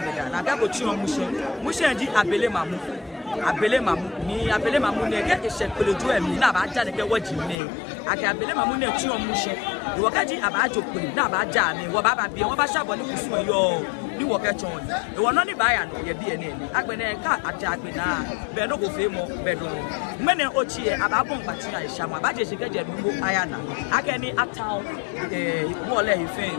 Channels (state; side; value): drops out; right; at 7.6 s